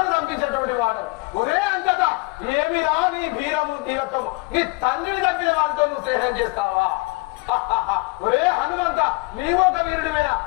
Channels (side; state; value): right; quieter; 27.2 dB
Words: దంపించేటువంటి వాడు. ఒరే అంతటా ఏమిరా నీ వీరము వీరత్వము? నీ తండ్రిని తప్పిన వారితో నువ్వు స్నేహం చేస్తావా? ఒరే హనుమంత, నీవు ఒక వీరుడివేనా?